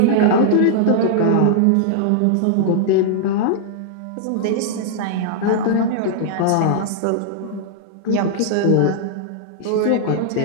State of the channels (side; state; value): both; different; correlation -0.01